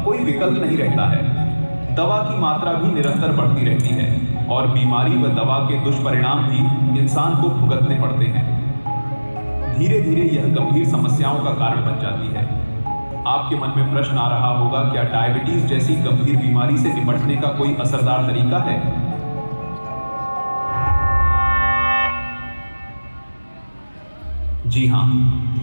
कोई विकल्प नहीं रहता है। दवा की मात्रा भी निरंतर बढ़ती रहती है और बीमारी व दवा के दुष्परिणाम भी इंसान को भुगतने पड़ते हैं। धीरे धीरे यह गंभीर समस्याओं का कारण बन जाती है। आपके मन में प्रश्न आ रहा होगा, क्या डायबिटीज जैसी गंभीर बीमारी से निपटने का कोई असरदार तरीका है? जी हाँ,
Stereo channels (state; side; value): inverted; both; correlation -1.00